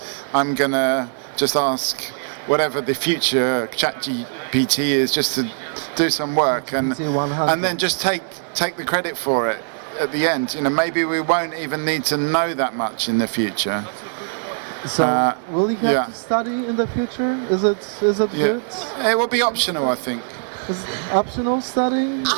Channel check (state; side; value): silent; left; 58 dB below the other